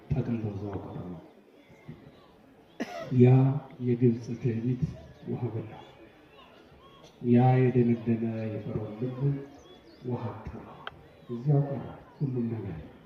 ጠቅልለው እዛው ቀሩ። ያ የግብፅ ትዕቢት ውሃ በላ። ያ የደነደነ የፈርዖን ልብ ውሃ አጣ። እዚያው ቀረ ሁሉም ነገር።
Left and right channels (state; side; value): identical; both; correlation 1.00